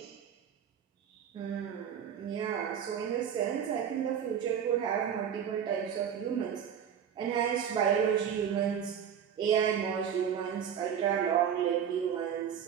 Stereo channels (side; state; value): left; quieter; 8.5 dB